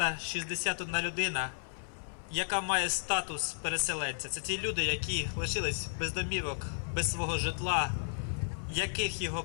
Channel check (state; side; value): silent; right; 55 dB below the other